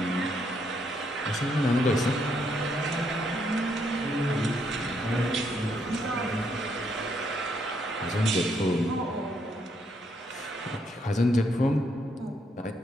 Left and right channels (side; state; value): both; normal; correlation 0.74